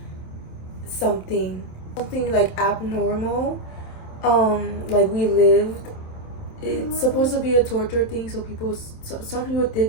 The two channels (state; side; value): late; right; 27 ms